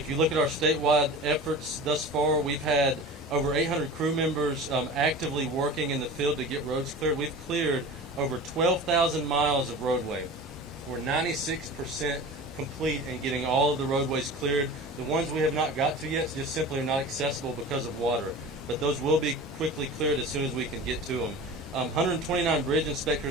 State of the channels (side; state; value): both; normal; correlation 0.36